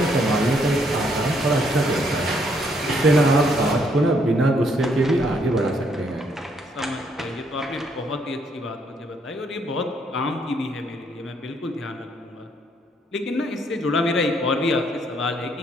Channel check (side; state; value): both; normal; correlation 0.70